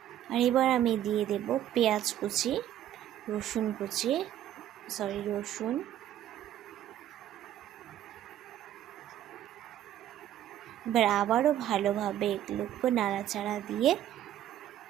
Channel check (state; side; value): quieter; left; 11.7 dB